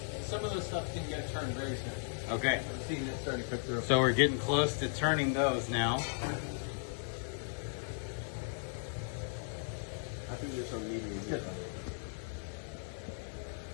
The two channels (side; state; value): right; silent; digital silence